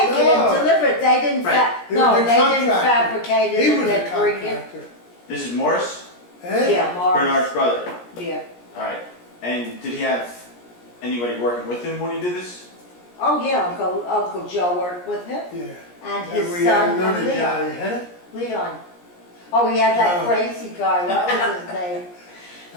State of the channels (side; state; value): right; late; 17 ms